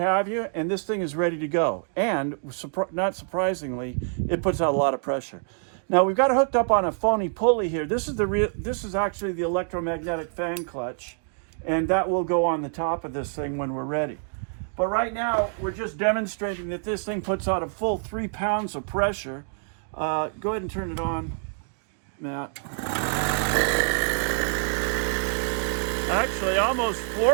you, and this thing is ready to go. And not surprisingly, it puts out a lot of pressure. Now we've got it hooked up on a phony pulley here. This is actually the electromagnetic fan clutch, and that will go on the top of this thing when we're ready. But right now we're just demonstrating that this thing puts out a full 3 pounds of pressure. Go ahead and turn it on, Matt. Actually, almost 4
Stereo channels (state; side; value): silent; left; 61 dB below the other